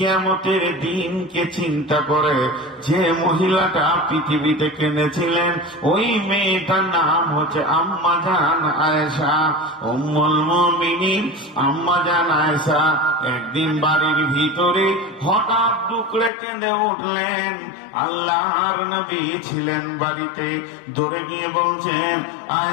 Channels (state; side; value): drops out; right; at 16.3 s